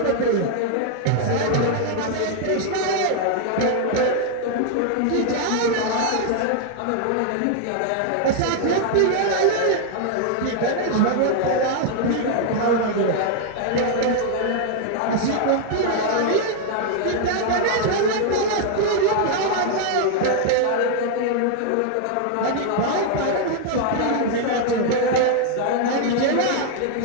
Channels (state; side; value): different; both; correlation 0.00